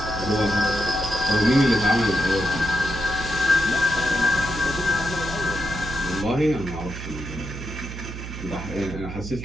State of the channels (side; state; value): right; noise; hum, 9 dB below the sound